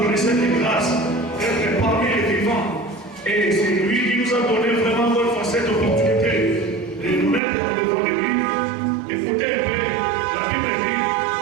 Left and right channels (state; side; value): drops out; left; at 7.4 s